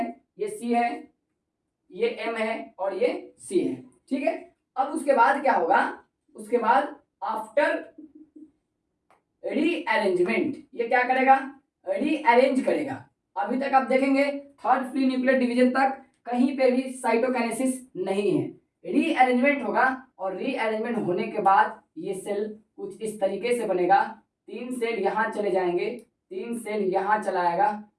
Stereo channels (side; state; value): both; identical; correlation 1.00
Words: ये C है, ये M है और ये C है। ठीक है। अब उसके बाद क्या होगा, उसके बाद आफ्टर रीअरेंजमेंट ये क्या करेगा, रीअरेंज करेगा। अभी तक आप देखेंगे थर्ड फ्री न्यूक्लियर डिवीजन तक कहीं पे भी साइटोकाइनेसिस नहीं है। रीअरेंजमेंट होगा और रीअरेंजमेंट होने के बाद ये सेल कुछ इस तरीके से बनेगा। 3 सेल यहाँ चले जाएंगे, 3 सेल यहाँ चला आएगा